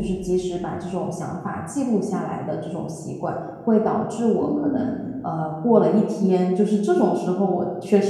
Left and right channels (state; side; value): identical; both; correlation 1.00